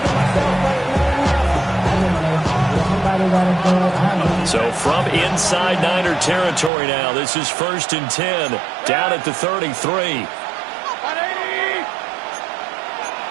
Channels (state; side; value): drops out; left; at 6.7 s